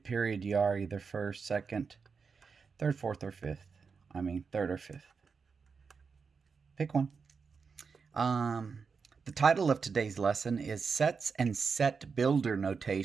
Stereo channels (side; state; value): left; quieter; 5.4 dB